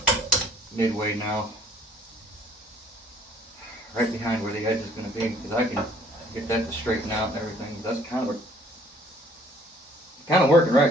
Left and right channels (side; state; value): both; normal; correlation 0.58